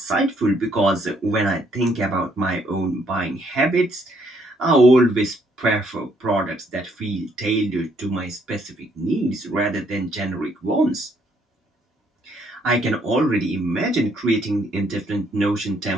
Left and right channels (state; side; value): normal; both; correlation 0.69